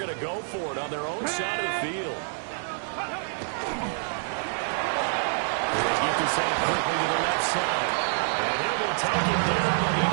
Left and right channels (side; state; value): left; silent; digital silence